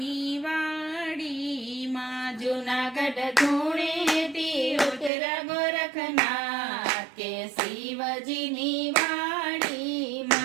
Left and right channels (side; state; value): left; drops out; at 5.1 s